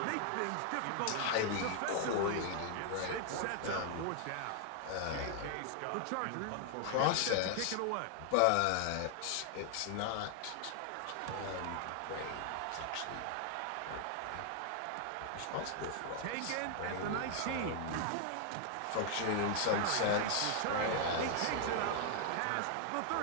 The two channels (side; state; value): both; different; correlation 0.00